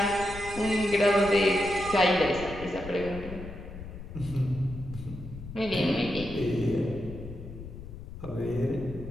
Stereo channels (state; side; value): noise; left; rumble, 12 dB below the sound